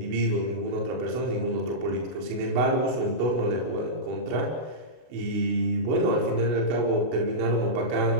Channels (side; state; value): left; late; 32 ms